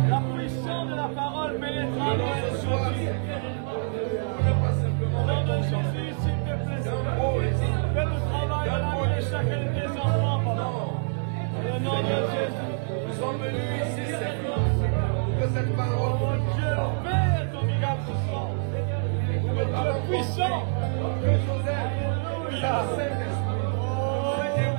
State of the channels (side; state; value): left; silent; digital silence